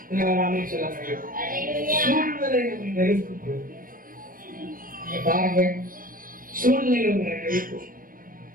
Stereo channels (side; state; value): left; late; 0.41 ms